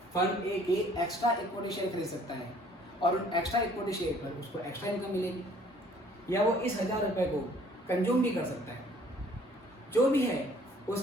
फर्म ए के एक्स्ट्रा इक्विटी शेयर खरीद सकता है और उन एक्स्ट्रा इक्विटी शेयर पर उसको एक्स्ट्रा इनकम मिलेगी, या वो इस 1000 रुपये को कंज्यूम भी कर सकता है। जो भी है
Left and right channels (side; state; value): both; normal; correlation 0.57